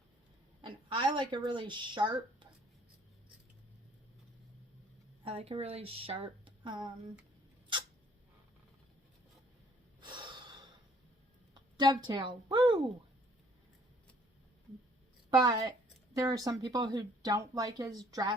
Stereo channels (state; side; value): normal; both; correlation 0.60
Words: And I like a really sharp dovetail. Woo! But there are some people who don't like as